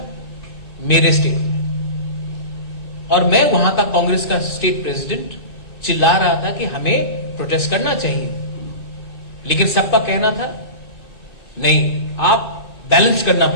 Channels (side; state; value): right; late; 2.5 ms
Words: मेरे स्टेट में। और मैं वहां का कांग्रेस का स्टेट प्रेसिडेंट चिल्ला रहा था कि हमें प्रोटेस्ट करना चाहिए, लेकिन सबका कहना था नहीं, आप बैलेंस करना